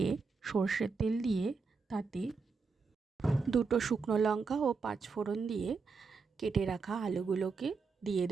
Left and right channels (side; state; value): left; quieter; 4.8 dB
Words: সর্ষের তেল দিয়ে তাতে 2টো শুকনো লঙ্কা ও 5 ফোড়ন দিয়ে কেটে রাখা আলুগুলোকে দিয়ে